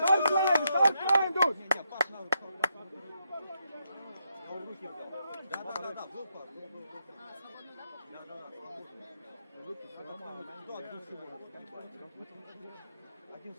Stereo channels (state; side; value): inverted; both; correlation -0.80